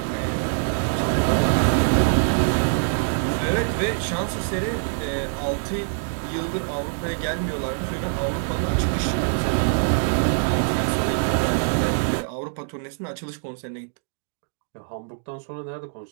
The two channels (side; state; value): left; silent; digital silence